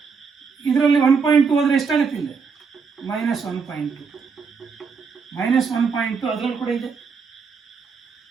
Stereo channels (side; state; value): left; quieter; 5.4 dB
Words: ಇದರಲ್ಲಿ 1.2 ಹೋದ್ರೆ ಎಷ್ಟಾಗುತ್ತೆ? ಇಲ್ಲಿ -1.2 ಅದರಲ್ಲಿ ಕೂಡ ಇದೆ.